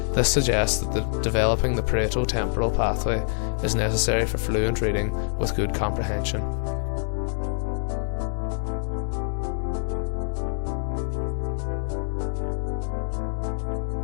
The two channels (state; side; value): silent; right; digital silence